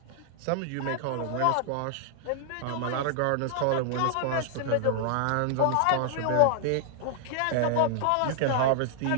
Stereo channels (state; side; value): different; both; correlation -0.01